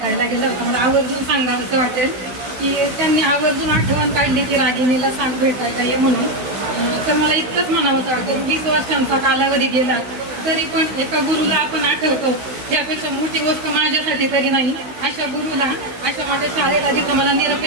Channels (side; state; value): left; late; 16 ms